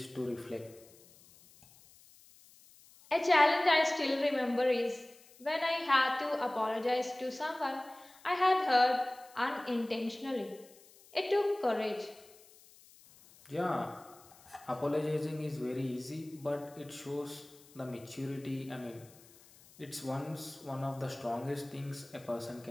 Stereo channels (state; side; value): noise; left; hiss, 25 dB below the sound